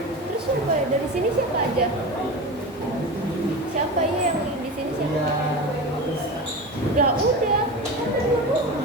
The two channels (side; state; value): both; normal; correlation 0.27